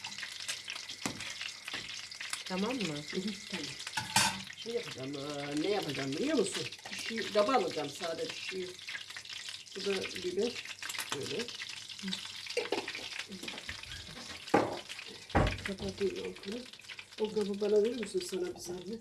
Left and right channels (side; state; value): both; identical; correlation 1.00